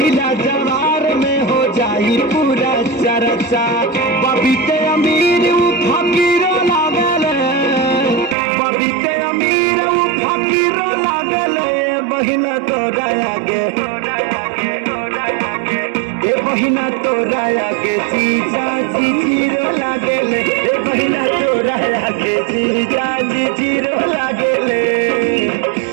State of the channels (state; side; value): drops out; left; at 8.3 s